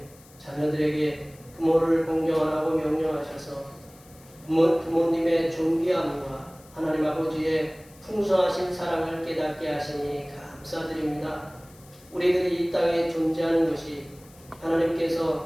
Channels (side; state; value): left; noise; hiss, 25 dB below the sound